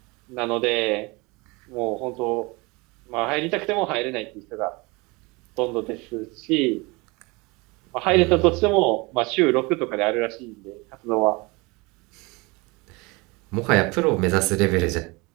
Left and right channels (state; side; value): quieter; left; 26.0 dB